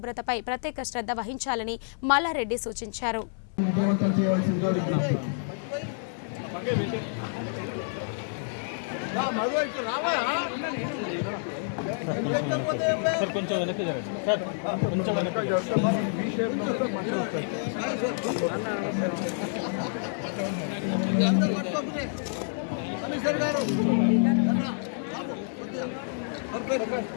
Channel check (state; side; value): silent; right; digital silence